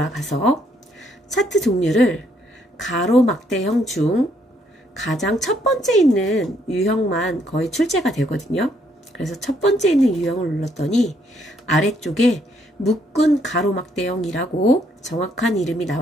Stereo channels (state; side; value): normal; both; correlation 0.70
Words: 차트 종류를 가로막대형 중 가장 첫 번째 있는 유형만 거의 출제가 되거든요. 그래서 첫 번째 있는 유형을 눌렀더니 아래쪽에 묶은 가로막대형이라고 정확한 이름이